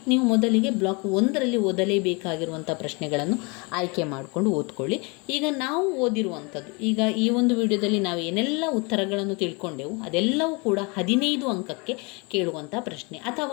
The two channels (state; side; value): quieter; right; 29.8 dB